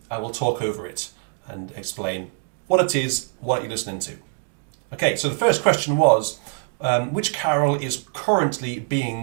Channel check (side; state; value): left; silent; 56 dB below the other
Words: will talk over it and explain what it is, what you're listening to. Okay. So the first question was, which carol is currently